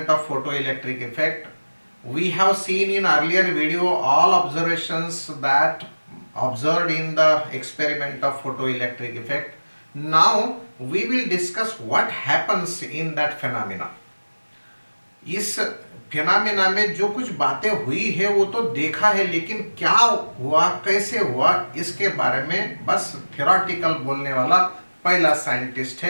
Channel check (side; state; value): both; inverted; correlation -1.00